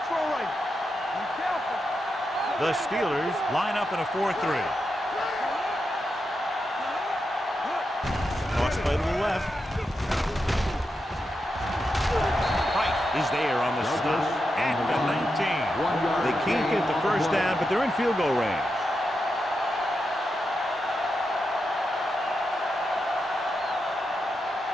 Throw right. Be careful. The Steelers line up in a 4-3. Toss play to the left. Price is there on the stop at the 19. They can't get the 1st down, but they're in field goal range.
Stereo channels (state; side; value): normal; both; correlation 0.87